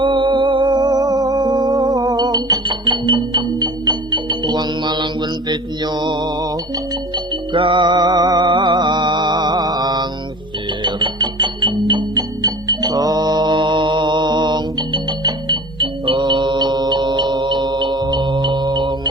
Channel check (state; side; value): normal; both; correlation 0.40